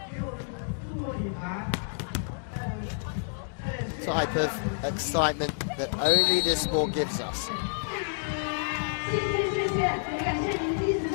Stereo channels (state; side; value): silent; right; digital silence